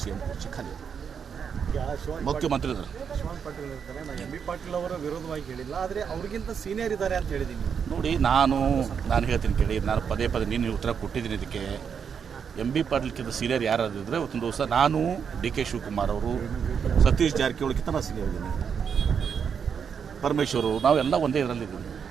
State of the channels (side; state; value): left; quieter; 7.0 dB